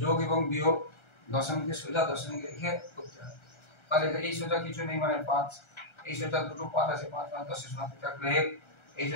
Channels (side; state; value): right; late; 1.3 ms